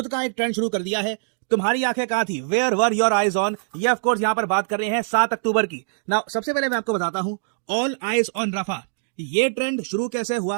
का एक ट्रेंड शुरू कर दिया है। तुम्हारी आंखें कहां थी, where were your eyes on. ये ऑफ कोर्स यहाँ पर बात कर रहे हैं 7 अक्टूबर की। नाउ सबसे पहले मैं आपको बताता हूं ऑल आईज ऑन रफा ये ट्रेंड शुरू कैसे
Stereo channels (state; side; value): silent; left; digital silence